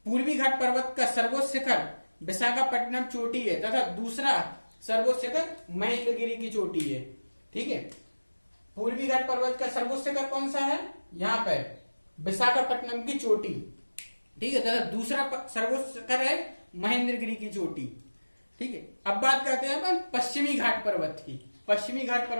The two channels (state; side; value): inverted; both; correlation -1.00